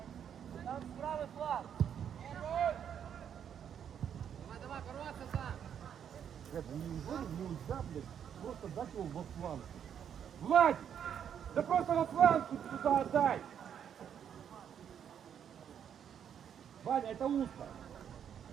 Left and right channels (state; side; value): quieter; left; 8.6 dB